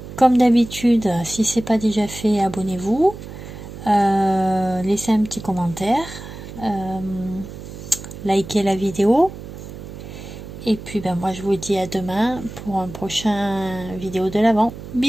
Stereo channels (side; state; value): right; noise; hum, 12 dB below the sound